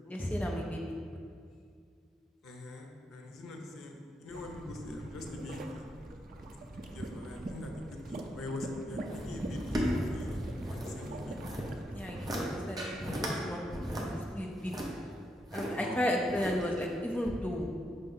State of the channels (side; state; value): both; normal; correlation 0.81